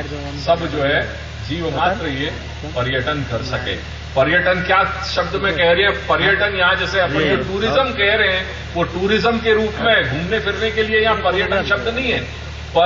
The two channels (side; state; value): both; identical; correlation 1.00